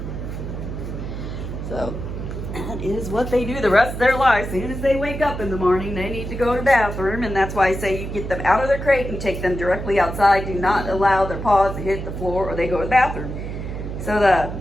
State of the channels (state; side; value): noise; right; hum, 6 dB below the sound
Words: So that is what they do the rest of their life. As soon as they wake up in the morning, they need to go to the bathroom, and that's why I say you get them out of their crate and take them directly outside. Do not allow their paws to hit the floor or they go to the bathroom. So